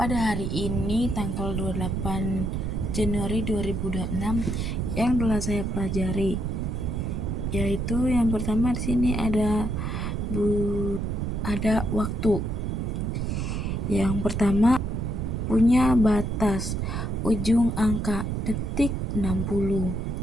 hari ini tanggal 28 Januari 2026 yang telah saya pelajari. Yaitu yang pertama di sini ada waktu. Yang pertama punya batas, ujung angka, detik 60,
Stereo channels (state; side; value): noise; right; rumble, 1 dB below the sound